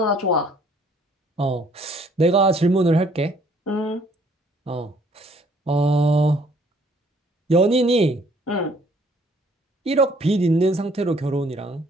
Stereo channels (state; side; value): normal; both; correlation 0.61